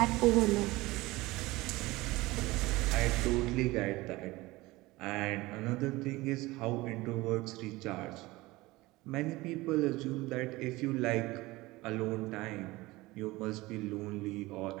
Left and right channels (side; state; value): left; quieter; 20.4 dB